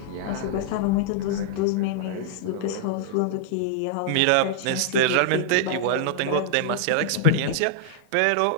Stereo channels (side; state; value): both; different; correlation -0.01